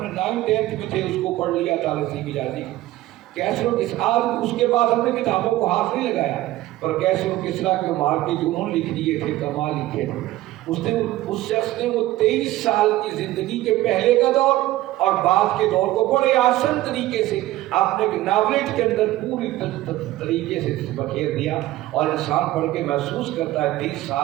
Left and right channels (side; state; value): left; quieter; 16.1 dB